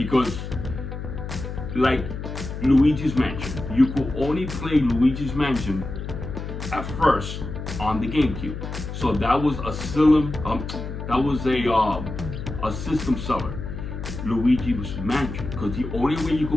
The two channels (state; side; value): noise; left; hum, 7 dB below the sound